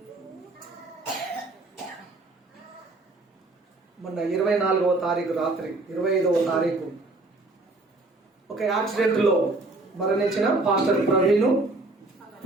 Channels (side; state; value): left; quieter; 3.1 dB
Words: మొన్న 24వ తారీఖు రాత్రి 25వ తారీఖు ఒక యాక్సిడెంట్ లో మరణించిన పాస్టర్ ప్రవీణ్